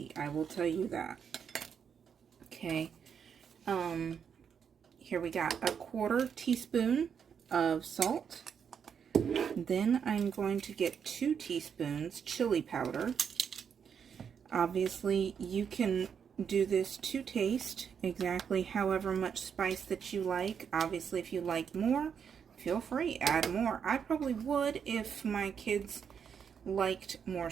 I will tell you that. Okay, here we got a 1/4 teaspoon of salt. Then I'm going to get 2 teaspoons chili powder. Obviously, you can do this to taste exactly however much spice that you like. Obviously, if you like more, feel free, add more. I probably would if my kids liked more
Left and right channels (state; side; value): quieter; left; 7.3 dB